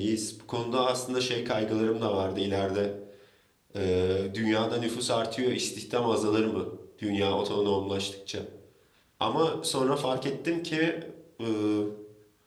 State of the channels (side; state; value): both; identical; correlation 1.00